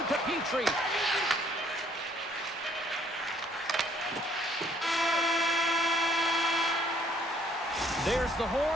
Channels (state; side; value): normal; both; correlation 0.64